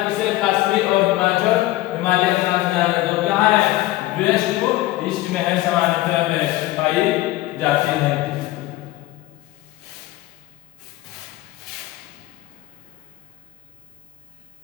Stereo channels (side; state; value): right; quieter; 17.1 dB